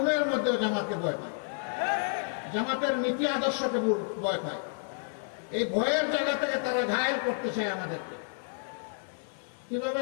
মধ্যেও জামাতকে ভয় পায়, জামাতের নীতি আদর্শকে ভয় পায়। এই ভয়ের জায়গা থেকে তারা ঘায়েল করতে চায় আমাদেরকে। কিভাবে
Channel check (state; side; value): silent; right; 58 dB below the other